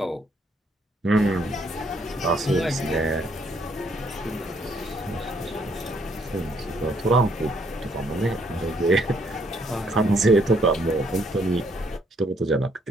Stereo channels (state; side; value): normal; both; correlation 0.69